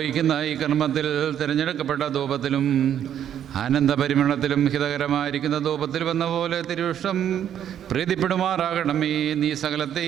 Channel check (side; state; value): left; quieter; 9.9 dB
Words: ഈ കർമ്മത്തിൽ തിരഞ്ഞെടുക്കപ്പെട്ട ധൂപത്തിലും ആനന്ദപരിമളത്തിലും ഹിതകരമായിരിക്കുന്ന ധൂപത്തിലും എന്ന പോലെ തിരുവിഷ്ടം പ്രീതിപ്പെടുമാറാകണമേ. നീ